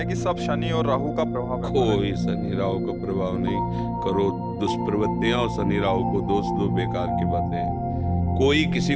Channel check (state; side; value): identical; both; correlation 1.00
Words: कि सब शनि और राहु का प्रभाव है। कोई शनि राहु का प्रभाव नहीं। करो दुष्प्रवृत्तियां और शनि राहु को दोष दो, बेकार की बातें हैं। कोई किसी